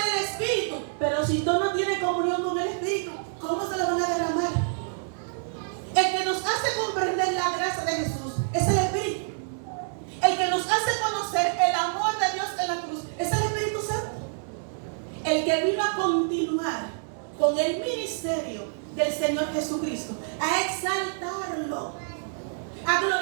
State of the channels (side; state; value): left; silent; digital silence